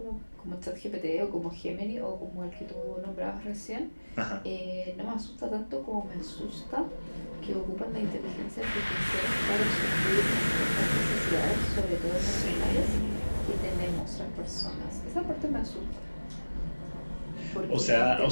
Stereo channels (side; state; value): both; inverted; correlation -1.00